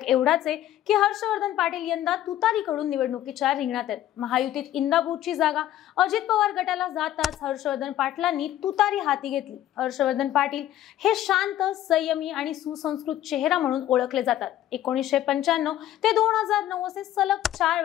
एवढाच आहे की हर्षवर्धन पाटील यंदा तुतारीकडून निवडणुकीच्या रिंगणात आहेत। महायुतीत इंदापूरची जागा अजित पवार गटाला जाताच हर्षवर्धन पाटलांनी तुतारी हाती घेतली। हर्षवर्धन पाटील हे शांत, संयमी आणि सुसंस्कृत चेहरा म्हणून ओळखले जातात। 1995 ते 2009 असे सलग 4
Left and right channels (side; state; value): right; quieter; 12.8 dB